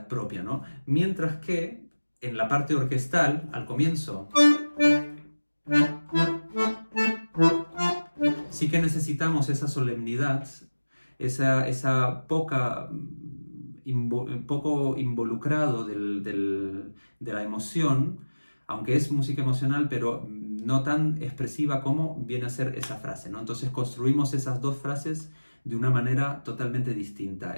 propia, ¿no? Mientras que en la parte orquestal, al comienzo, sí que necesitamos esa solemnidad, esa poco involucrado de la emoción, aunque es música emocional, pero no tan expresiva como viene a ser esa frase, ¿no? Entonces construimos esas dos frases de una manera totalmente distinta.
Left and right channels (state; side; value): inverted; both; correlation -1.00